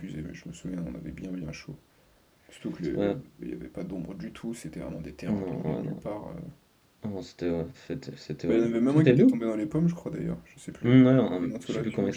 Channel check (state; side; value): identical; both; correlation 1.00